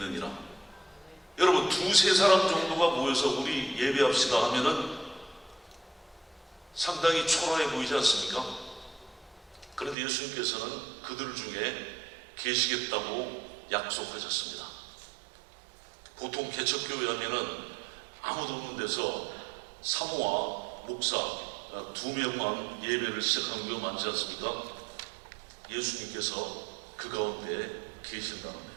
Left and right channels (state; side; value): drops out; left; at 10.0 s